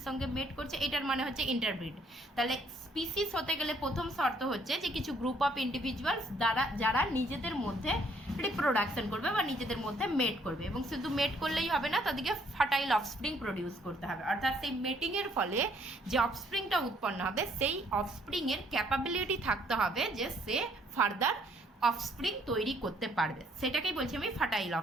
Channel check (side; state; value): both; normal; correlation 0.65